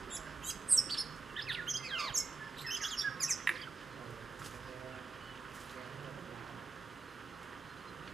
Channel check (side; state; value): left; quieter; 4.3 dB